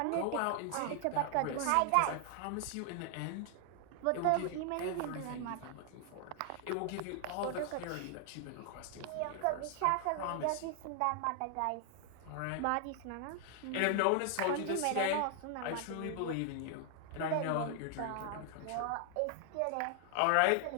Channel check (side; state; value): both; different; correlation 0.00